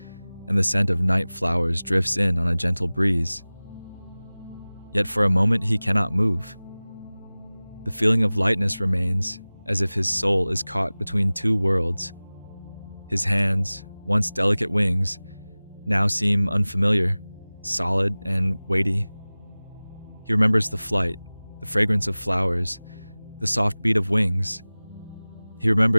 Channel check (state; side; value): inverted; both; correlation -0.99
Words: and the scent of night flowers drifts in on a gentle breeze. Yet for a moment he cannot move. The feeling of lightness remains, as if his soul is caught between two worlds. His hands, once delicate wings, now seem unfamiliar, solid and weighty. He remembers the flight, the fragrance of flowers, the soft beat of wings. He